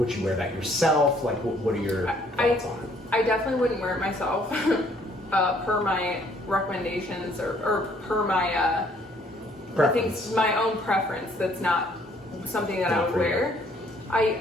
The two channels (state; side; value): normal; both; correlation 0.63